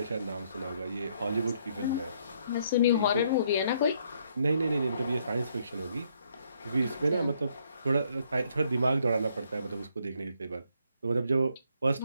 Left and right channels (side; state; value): both; inverted; correlation -0.70